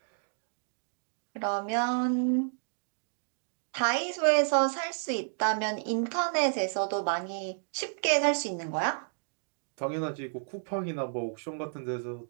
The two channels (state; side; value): silent; left; digital silence